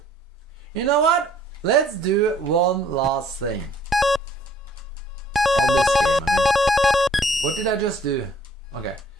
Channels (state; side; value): normal; both; correlation 0.59